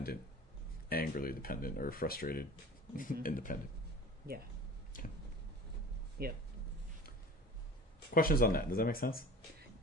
angrily dependent, or frustrated, independent. Yeah. Okay. Yep. Questions on that? Does that make sense?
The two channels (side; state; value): both; normal; correlation 0.40